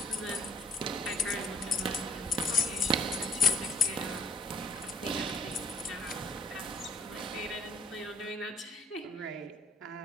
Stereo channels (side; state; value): both; normal; correlation 0.61